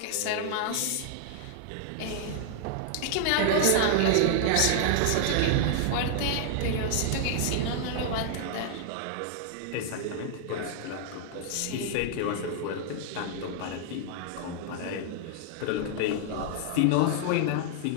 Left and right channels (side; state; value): both; different; correlation -0.01